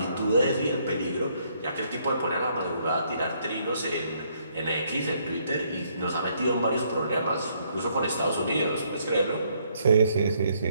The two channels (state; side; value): inverted; both; correlation -0.69